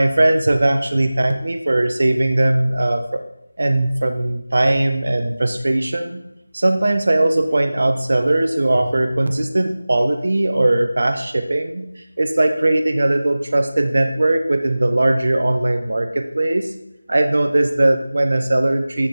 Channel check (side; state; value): both; inverted; correlation -0.98